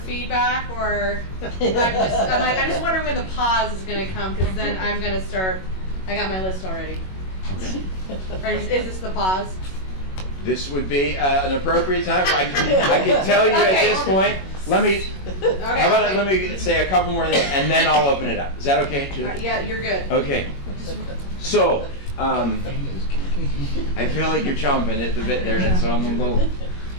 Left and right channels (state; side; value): late; right; 21 ms